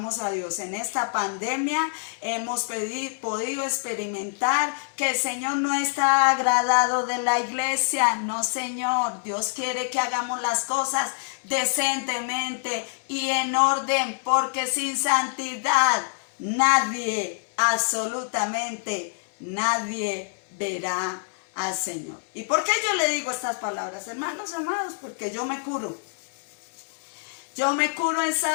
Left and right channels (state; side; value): silent; right; 61 dB below the other